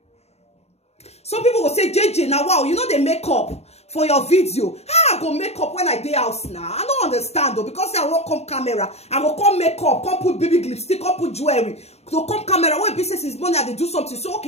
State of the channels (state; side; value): late; right; 0.31 ms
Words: Some people will say, JJ, now wow, you know they make up for your video. How I go make up when I day house now? I don't understand though, because I won't come camera, I will come make up, come put baby lipstick, come put jewelry. So come camera, when business is money, they do something. So